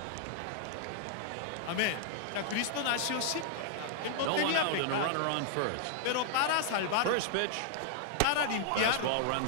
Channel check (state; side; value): different; both; correlation -0.01